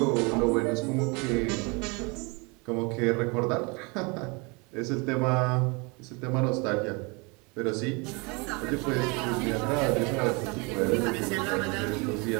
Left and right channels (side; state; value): left; quieter; 29.2 dB